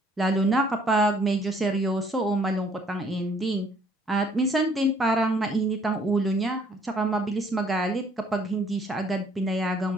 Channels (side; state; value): both; normal; correlation 0.62